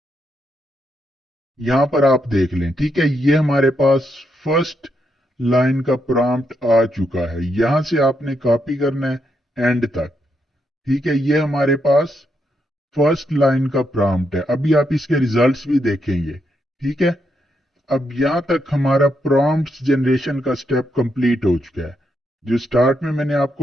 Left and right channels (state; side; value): normal; both; correlation 0.80